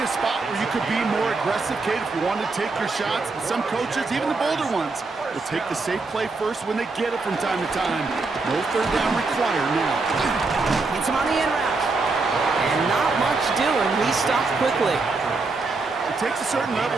spot where you could be more aggressive, Kate, if you wanted to take your shots. But some coaches, even the bolder ones, will take the safe play first when they get it from time to time. No third down required now. Hits him on the in route. And not much doing. He stopped quickly. It takes a certain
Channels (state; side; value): quieter; left; 3.8 dB